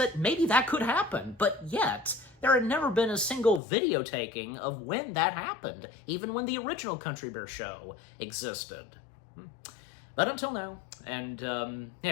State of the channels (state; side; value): drops out; right; at 3.6 s